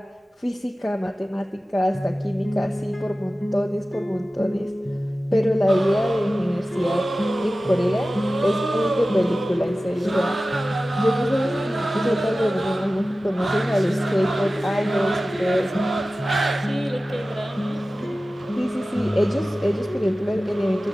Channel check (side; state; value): both; normal; correlation 0.96